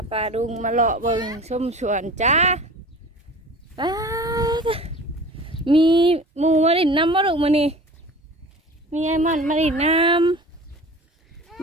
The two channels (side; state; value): both; normal; correlation 0.40